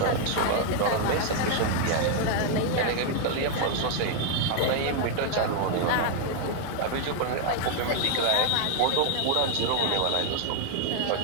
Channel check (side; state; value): both; different; correlation 0.00